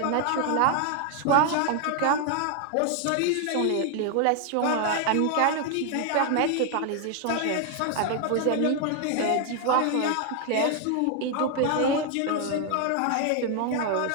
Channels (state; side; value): different; both; correlation 0.00